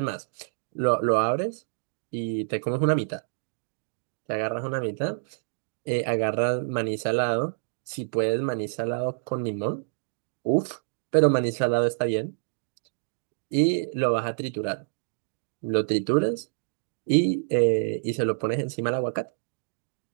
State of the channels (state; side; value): silent; left; digital silence